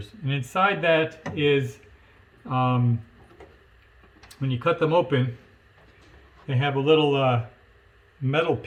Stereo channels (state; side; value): identical; both; correlation 1.00